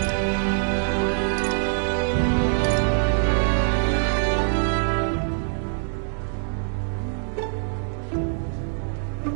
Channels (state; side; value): silent; left; digital silence